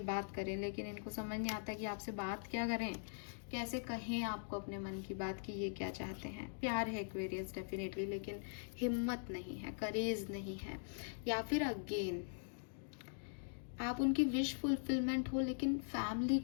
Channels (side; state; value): right; silent; digital silence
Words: बात करें, लेकिन इनको समझ नहीं आता कि आपसे बात क्या करें, कैसे कहें आपको अपने मन की बात कि ये क्या चाहते हैं। प्यार है एक्वेरियस डेफिनेटली, लेकिन हिम्मत नहीं है, करेज नहीं है। या फिर अगेन आप उनकी विश फुलफिलमेंट हो, लेकिन फैमिली